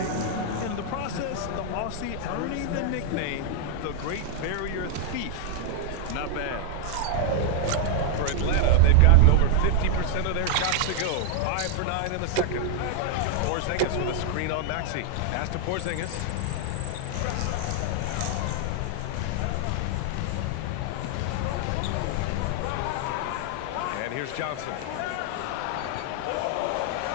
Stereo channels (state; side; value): different; both; correlation 0.00